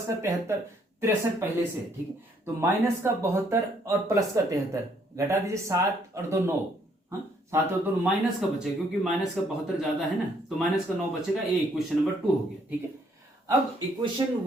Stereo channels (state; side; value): normal; both; correlation 0.67